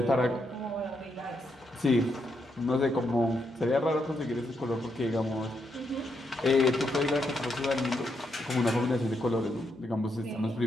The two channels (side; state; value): both; normal; correlation 0.80